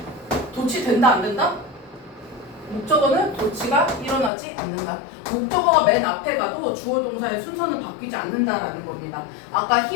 도치 된다 안 된다? 목적어는 도치가 일어나지 않는다. 목적어가 맨 앞에 가도 주어 동사의 순서는 바뀌지 않는다라는 겁니다. 아까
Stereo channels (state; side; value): drops out; right; at 4.3 s